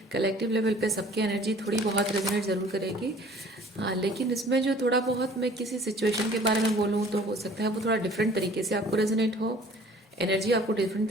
कलेक्टिव लेवल पे सबकी एनर्जी थोड़ी बहुत रेजोनेट ज़रूर करेगी। हाँ, लेकिन इसमें जो थोड़ा बहुत मैं किसी सिचुएशन के बारे में बोलूँ तो हो सकता है वो थोड़ा डिफरेंट तरीके से आपको रेजोनेट हो, एनर्जी आपको डिफरेंट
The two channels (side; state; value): both; normal; correlation 0.51